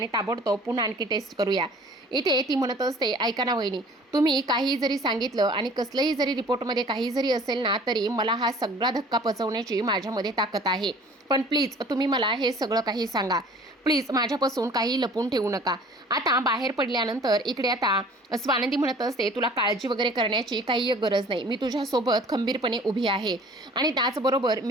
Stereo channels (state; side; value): normal; both; correlation 0.49